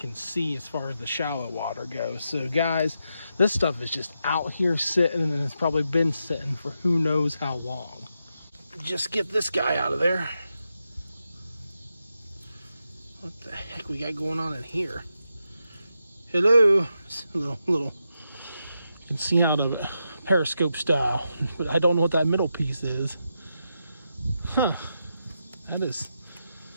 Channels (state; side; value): inverted; both; correlation -0.85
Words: see as far as the shallow water goes. So guys, this stuff is just out here sitting, and it's probably been sitting for who knows how long. Just get this guy out of there. What the heck we got going on in here? Hello. It's a little, you can see out of it, periscope style, but I don't know what that middle piece is. Huh, that is